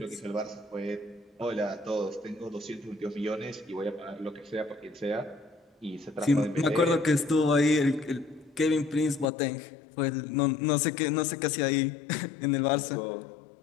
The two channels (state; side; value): drops out; right; at 9.2 s